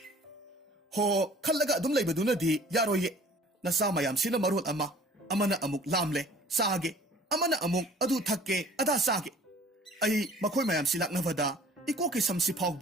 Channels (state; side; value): normal; both; correlation 0.50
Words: ho khallaga adum laibadunadi yaroye nasa mayam sina marul amana amuk lamle sage amana amuk adu thakke ada sage ai makhoi mayam silaknavada ikoki samsi